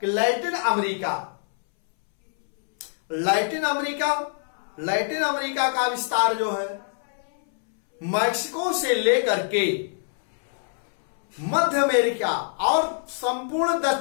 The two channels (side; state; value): right; silent; 62 dB below the other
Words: कि लैटिन अमेरिका का विस्तार जो है मैक्सिको से लेकर के मध्य अमेरिका और संपूर्ण